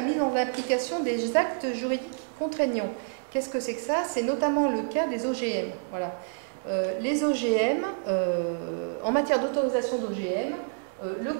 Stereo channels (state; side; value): silent; left; digital silence